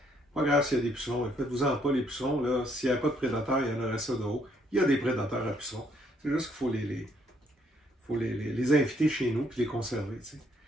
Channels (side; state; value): both; normal; correlation 0.69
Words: Pas grave s'il y a des pucerons, faites-vous-en pas les pucerons, là. S'il n'y a pas de prédateurs, il y en aurait ça de haut. Il y a des prédateurs à pucerons. C'est juste qu'il faut les inviter chez nous et les conserver. T'sais.